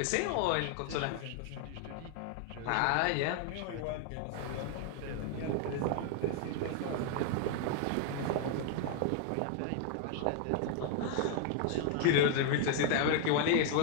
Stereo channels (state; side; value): different; both; correlation 0.00